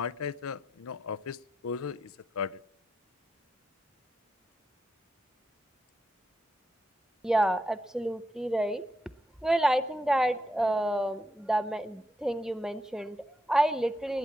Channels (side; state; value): both; normal; correlation 0.83